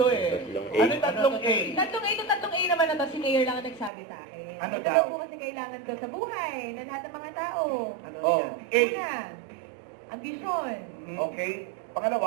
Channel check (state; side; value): drops out; left; at 3.9 s